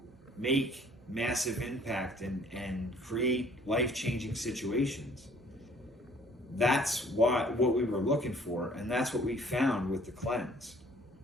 make massive impact and create life-changing situations. That's what we were looking for, and that's what we found with the cleanse.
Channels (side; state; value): both; normal; correlation 0.57